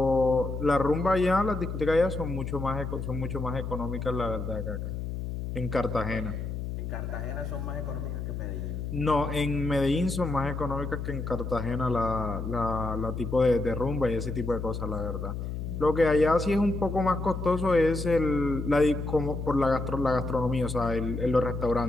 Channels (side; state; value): left; noise; hum, 5 dB below the sound